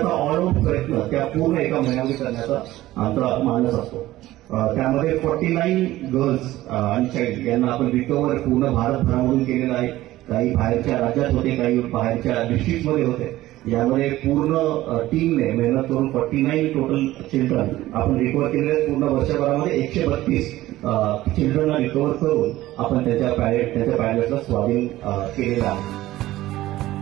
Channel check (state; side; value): quieter; left; 16.0 dB